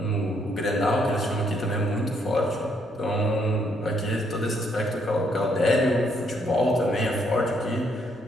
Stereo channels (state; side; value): normal; both; correlation 0.71